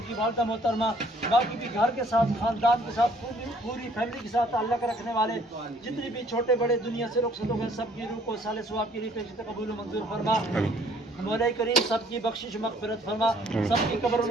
کی والدہ محترمہ باقی بھی گھر کے ساتھ خاندان کے ساتھ پوری فیملی کے ساتھ تعلق رکھنے والے جتنے بھی چھوٹے بڑے دنیا سے رخصت ہو گئے سب کی روح کو اصال ثواب کے لیے پیش قبول و منظور فرما. مولا کریم سب کی بخشش مغفرت فرما. سب کی قبروں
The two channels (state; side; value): normal; both; correlation 0.60